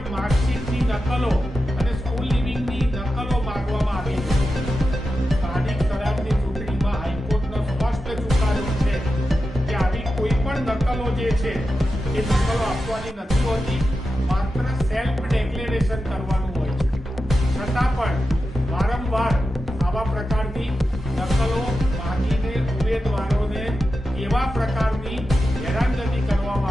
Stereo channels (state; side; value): normal; both; correlation 0.91